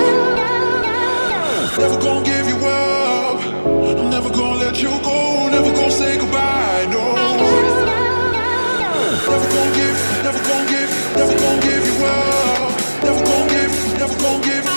Never gonna give you up, I'm never gonna let you go, never gonna say goodbye, no. Never gonna give you up, never gonna give, never gonna give, never gonna give you up, never gonna give, never gonna give,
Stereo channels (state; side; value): inverted; both; correlation -1.00